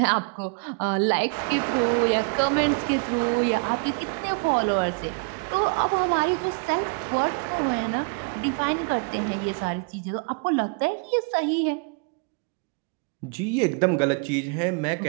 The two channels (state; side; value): quieter; left; 34.9 dB